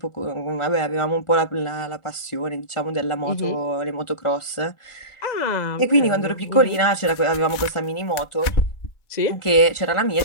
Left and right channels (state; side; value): late; right; 1.4 ms